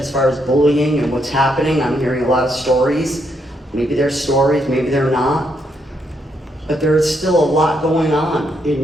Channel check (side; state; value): both; normal; correlation 0.77